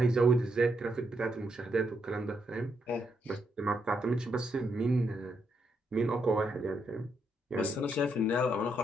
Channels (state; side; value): normal; both; correlation 0.78